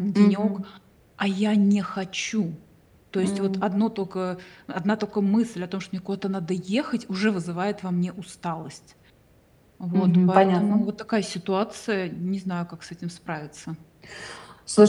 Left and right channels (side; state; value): both; identical; correlation 1.00